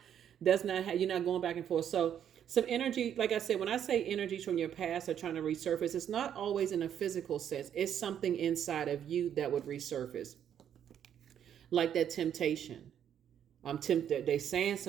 not how, you're not going back and forth. So some energy, like I said, when I say energies from your past are trying to resurface, it's not always in a physical sense. It's something inside of you that would resurface. Like that temptation. I'm tempted. They saying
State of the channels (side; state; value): left; quieter; 9.4 dB